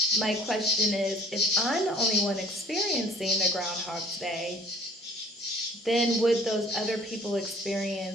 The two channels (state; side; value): normal; both; correlation 0.53